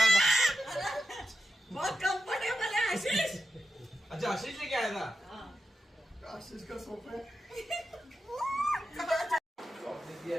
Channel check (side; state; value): both; normal; correlation 0.90